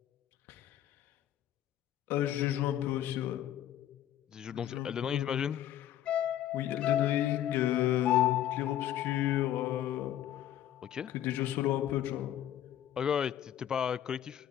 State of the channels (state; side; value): quieter; right; 11.6 dB